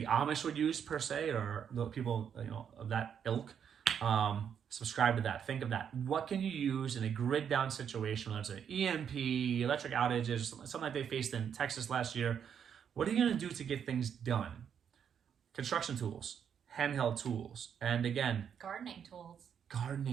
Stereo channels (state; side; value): quieter; left; 8.0 dB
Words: Amish would use per se, or the people of that ilk. Subscribe to that. Think of that. What can you use in a grid down situation, whether it's an EMP, electric outages, something like they faced in Texas last year? What are you going to do to get things done? Construction tools, handheld tools, and again, gardening